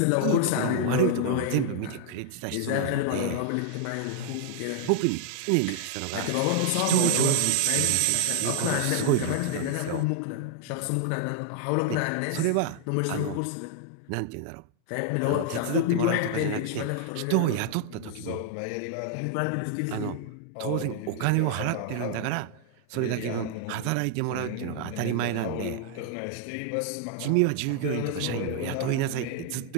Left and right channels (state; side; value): different; both; correlation -0.01